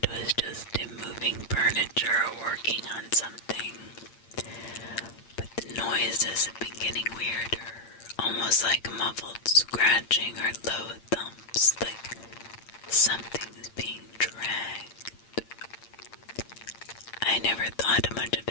was just him moving furniture or working on something. But the noises have been getting weirder, almost like muffled scratching or low thumps, like something's being dragged. I never thought much of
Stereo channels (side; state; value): right; late; 8.7 ms